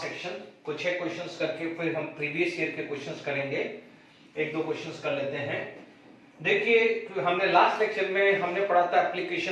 action. कुछ है क्वेश्चंस करके फिर हम प्रीवियस ईयर के क्वेश्चंस करेंगे। एक दो क्वेश्चंस कर लेते हैं। देखिए हमने लास्ट लेक्चर में हमने पढ़ा था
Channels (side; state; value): both; identical; correlation 1.00